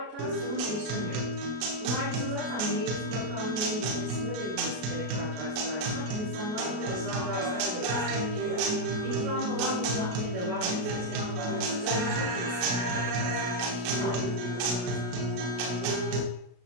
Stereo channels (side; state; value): left; late; 33 ms